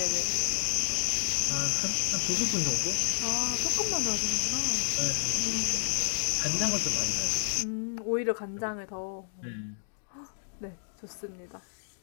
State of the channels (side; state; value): right; silent; digital silence